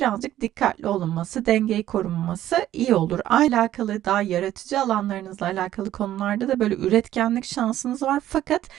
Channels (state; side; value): quieter; left; 12.8 dB